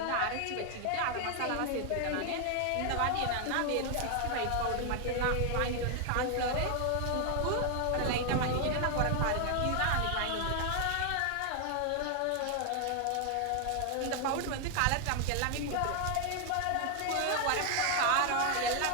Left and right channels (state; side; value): different; both; correlation 0.00